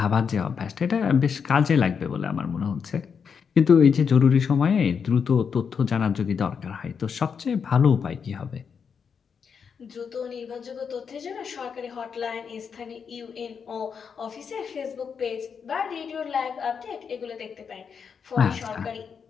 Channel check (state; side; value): quieter; right; 6.5 dB